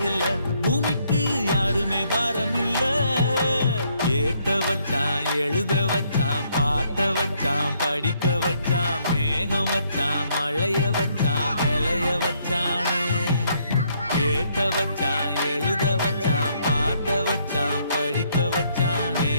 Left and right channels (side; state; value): both; inverted; correlation -0.71